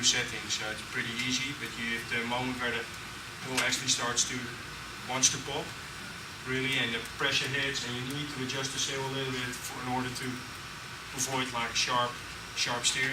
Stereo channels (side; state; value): both; identical; correlation 1.00